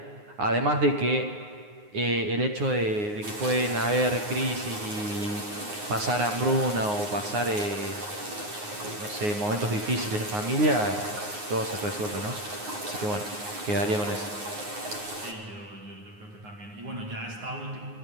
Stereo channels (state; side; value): late; left; 9.6 ms